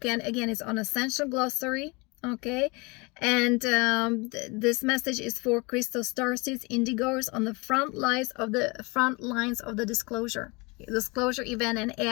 again, it's on Ascension Glossary, okay? And this message is for Christos Starseeds, Indigos on the front lines of the disclosure event and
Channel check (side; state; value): right; quieter; 27.2 dB